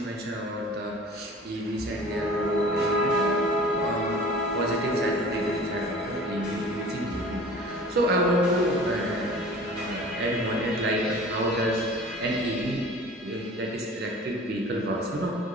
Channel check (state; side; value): normal; both; correlation 0.43